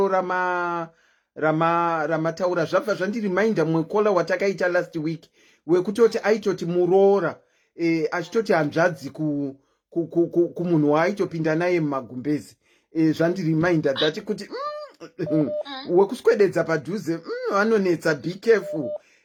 ramataura zvabva zvandirimainda mwekola watakaita last week wekutoti aitoti muroora achitoti hanzvadzi kumunhu waaitopinda naye mumagumbezi. Zvandirimainda dhati kuti wekuswededza padhuze vanonetsa. Be careful.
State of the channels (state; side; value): identical; both; correlation 1.00